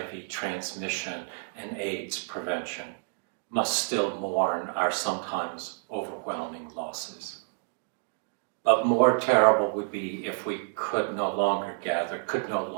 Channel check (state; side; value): silent; left; 59 dB below the other